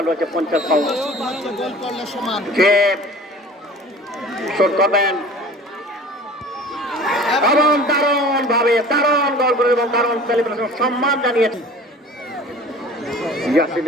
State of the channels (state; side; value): normal; both; correlation 0.43